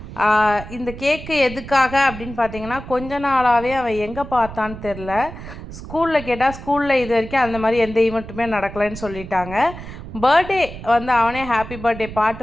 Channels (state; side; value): noise; right; rumble, 12 dB below the sound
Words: இந்த கேக்கு எதுக்காக அப்படின்னு பார்த்தீங்கன்னா, கொஞ்ச நாளாகவே அவன் எங்கே பார்த்தான்னு தெரில. ஸ்கூலில் கேட்டால் ஸ்கூலில் இது வரைக்கும் அந்த மாதிரி எந்த ஈவெண்ட்டுமே நடக்கலைன்னு சொல்லிட்டாங்க. பர்த்டே வந்து அவனே ஹாப்பி பர்த்டே